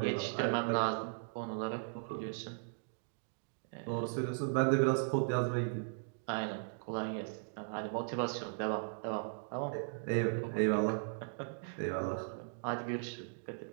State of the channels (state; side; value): silent; left; digital silence